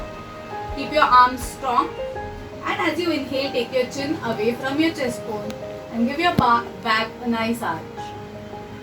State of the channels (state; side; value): identical; both; correlation 1.00